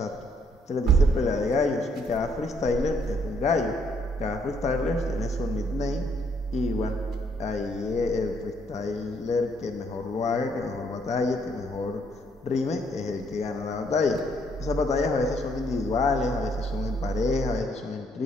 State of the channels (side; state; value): both; normal; correlation 0.69